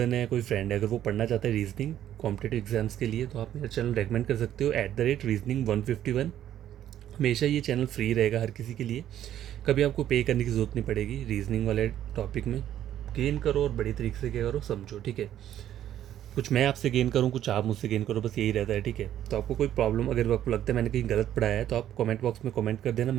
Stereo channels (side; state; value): left; quieter; 11.4 dB